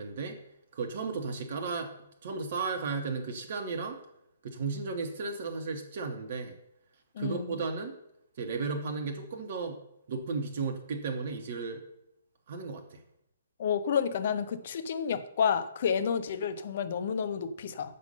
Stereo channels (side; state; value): both; inverted; correlation -0.56